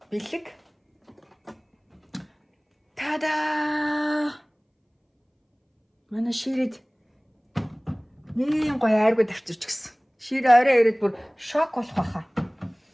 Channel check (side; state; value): both; identical; correlation 1.00